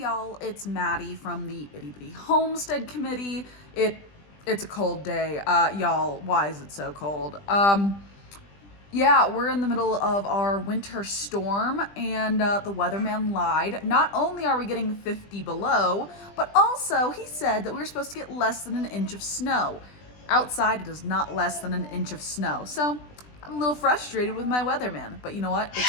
y'all, it's Maddie from the Itty Bitty Homestead Committee. It's a cold day. Y'all, why is it so cold? Yeah, we're in the middle of our winter storm, and the weatherman lied. Not only are we getting 50 below, but also he said that we were supposed to get less than an inch of snow. Outside, it is not less than an inch of snow. So I'm a little frustrated with my weatherman, but you know what?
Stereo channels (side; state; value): right; late; 20 ms